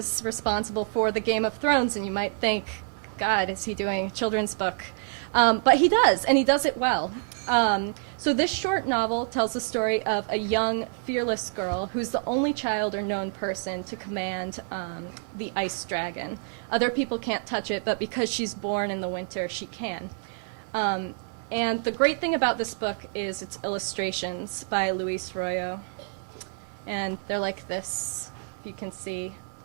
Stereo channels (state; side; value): silent; left; 57 dB below the other